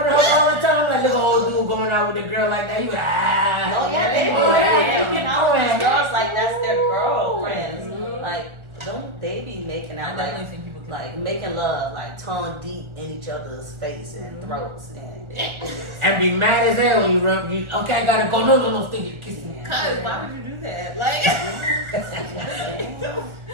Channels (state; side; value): late; left; 1.4 ms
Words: of her all the time, like look at old dude going out with a girl like that. You like, Oh yeah, they do. oh, They yeah, making out with yeah. girls like that's their girlfriends. Like, don't they be making I out definitely like think people can. like making love, like tongue deep in each other's face and throats and And be mad as hell when you run. You, okay, I gotta go. No, stick it, kiss me. Cause why would you do that? Like,